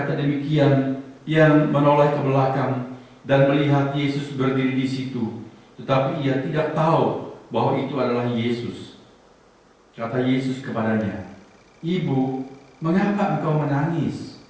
demikian, ia menoleh ke belakang dan melihat Yesus berdiri di situ, tetapi ia tidak tahu bahwa itu adalah Yesus. Kata Yesus kepadanya, "Ibu, mengapa engkau menangis?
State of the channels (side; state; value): both; identical; correlation 1.00